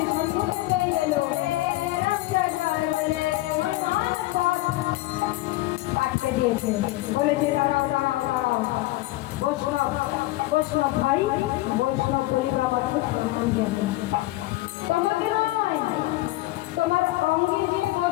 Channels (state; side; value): quieter; right; 18.2 dB